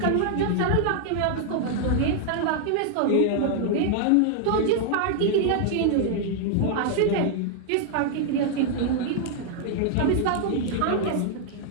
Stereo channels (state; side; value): different; both; correlation -0.01